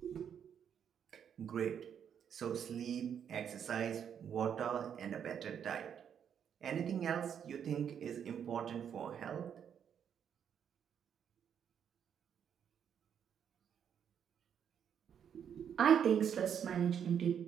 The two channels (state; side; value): quieter; left; 8.3 dB